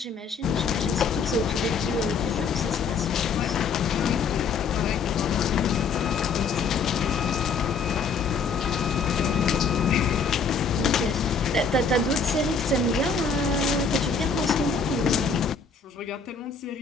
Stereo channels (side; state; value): right; quieter; 5.1 dB